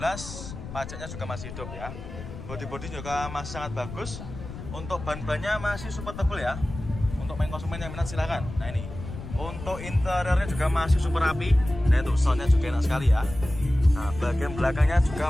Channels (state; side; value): noise; left; rumble, 11 dB below the sound